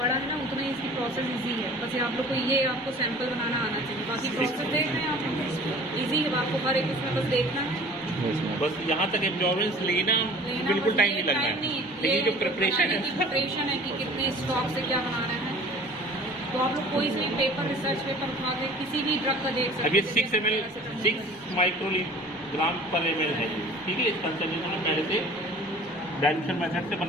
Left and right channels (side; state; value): both; normal; correlation 0.46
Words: है ना, उतना ही इसकी प्रोसेस इजी है। बस ये आप लोग को ये आपको सैंपल बनाना आना चाहिए, बाकी प्रोसेस देख रहे हैं आप इजी है। आपको हर एक उसमें बस देखना है, बस यहाँ तक एब्जॉर्बेंस लेना बिल्कुल टाइम नहीं लगना है। लेकिन जो प्रिपरेशन है कि कितने स्टॉक से क्या बनाना है, तो आप लोग कोई भी पेपर रिसर्च पेपर उठा के किसी भी ड्रग का देख सकते अब ये 6 ml 6 माइक्रोग्राम पर ml है, ठीक है। इस कंसंट्रेशन में पहले से डाइल्यूशन मेथड से